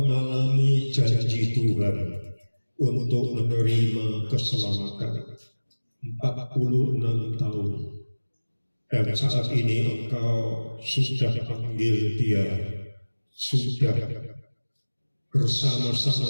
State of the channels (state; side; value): inverted; both; correlation -1.00